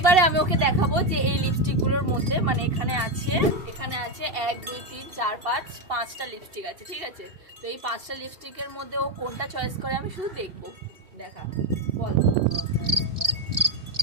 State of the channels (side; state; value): left; late; 2.7 ms